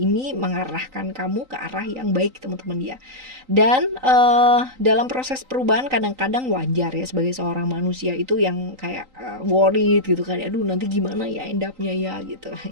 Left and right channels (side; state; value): left; late; 3.9 ms